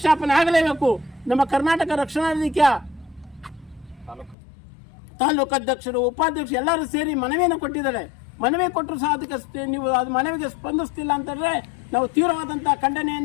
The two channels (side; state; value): right; drops out; at 4.4 s